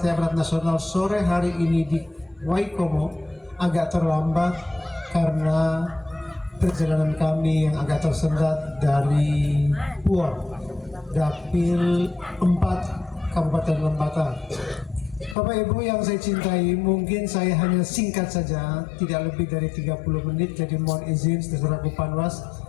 Amanat Nasional sore hari ini di Waikomo agak terlambat karena perjalanan kami yang agak tersendat dari Puor, Dapil 4 Kabupaten Lembata. Bapak Ibu yang saya cintai, mungkin saya hanya singkat saja, tidak lebih dari 30 menit, jadi mohon izin saudaraku Panwas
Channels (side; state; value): right; drops out; at 15.4 s